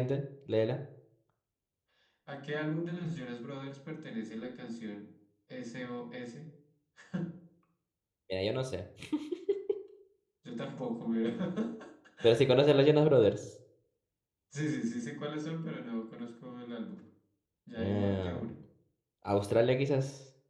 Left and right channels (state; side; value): identical; both; correlation 1.00